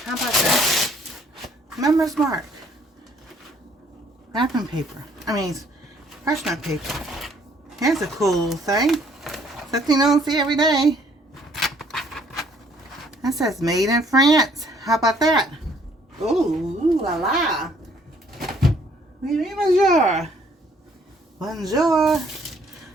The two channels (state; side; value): normal; both; correlation 0.63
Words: How about that? Member's mark. Wrapping paper. Parchment paper. Here's a cool little thing. Something you don't see every day. That says made in France. How about that? Ooh, la la. Oui, oui, bonjour. Bonjour.